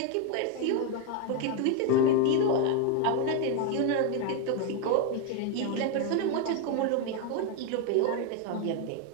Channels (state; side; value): different; both; correlation 0.01